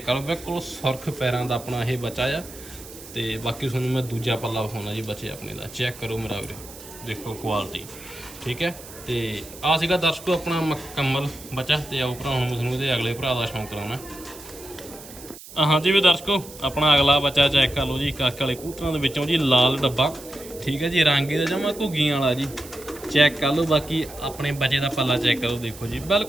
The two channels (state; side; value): noise; right; hiss, 16 dB below the sound